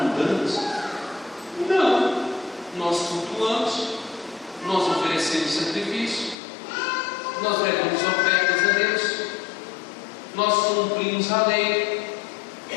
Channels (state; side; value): drops out; right; at 6.4 s